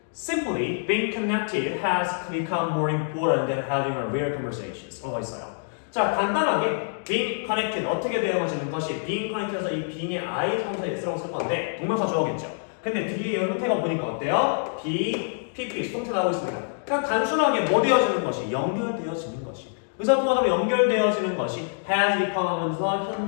Simply, being connected has become more important than having a real conversations. 라고 있어요. 자, 간단하게 being connected 어떻게 되어지는 것이 being connected에서 이 being의 I 성사 S라고 쓸 건데 동명사 주어겠죠. 근데 뒤에 형태가 보니까 어때요? be, pp, 수동태 나오고 있습니다. 그냥 단순하게 뭐 되어지는 것이? 연결되어지는 것이. 의사소통하다 연결되어지는 것이 has become 하면서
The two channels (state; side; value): silent; right; digital silence